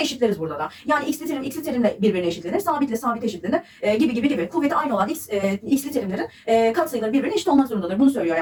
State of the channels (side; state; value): both; identical; correlation 1.00